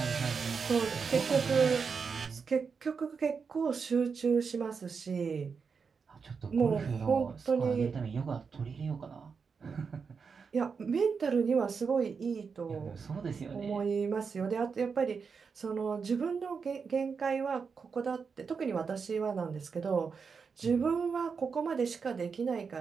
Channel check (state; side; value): quieter; left; 5.6 dB